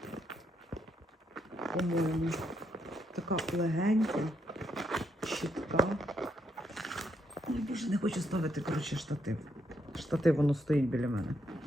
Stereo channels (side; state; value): both; normal; correlation 0.78